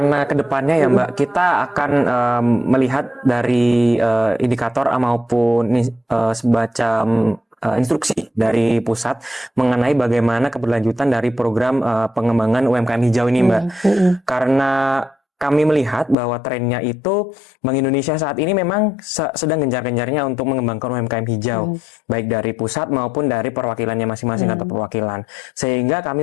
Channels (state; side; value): drops out; right; at 16.2 s